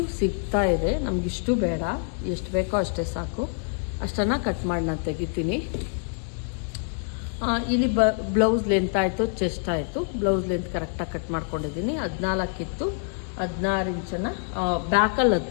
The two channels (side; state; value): right; silent; 58 dB below the other